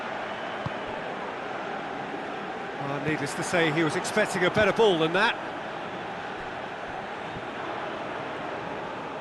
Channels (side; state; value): both; identical; correlation 1.00